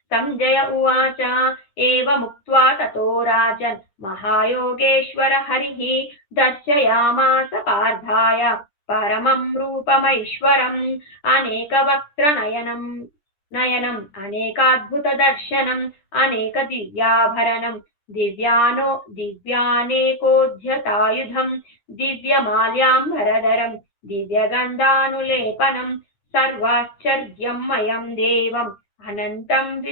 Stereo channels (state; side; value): late; right; 10 ms